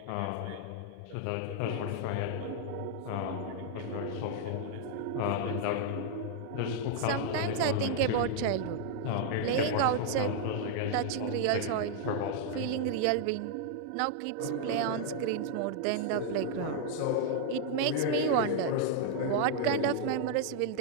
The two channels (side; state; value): both; different; correlation -0.01